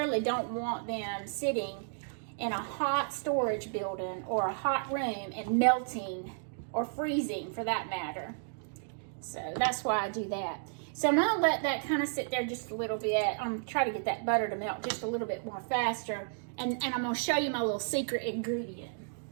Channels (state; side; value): silent; left; digital silence